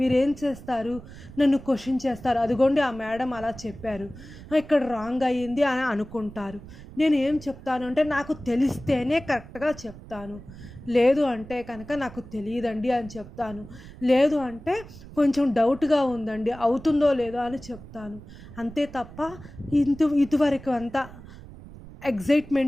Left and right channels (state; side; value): noise; right; rumble, 16 dB below the sound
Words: చేస్తారు? నన్ను క్వశ్చన్ చేస్తారు. అదిగోండి ఆ మేడం అలా చెప్పారు, ఇక్కడ రాంగ్ అయ్యింది అని అనుకుంటారు. నేను ఏం చెప్తాను అంటే నాకు తెలిస్తేనే కరెక్ట్గా చెప్తాను. లేదు అంటే కనుక నాకు తెలియదండి అని చెప్తాను. లేదు అంటే కొంచెం డౌట్గా ఉందండి, అవుతుందో లేదో అని చెప్తాను. అంతే తప్ప ఇదివరకు అంతా